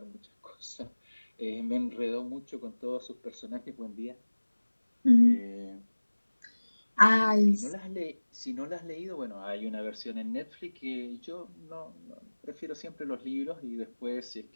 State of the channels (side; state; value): both; inverted; correlation -1.00